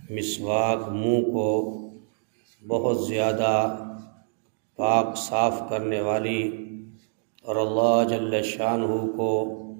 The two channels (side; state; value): left; silent; digital silence